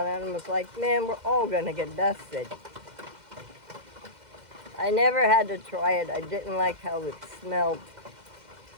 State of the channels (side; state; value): left; late; 2.1 ms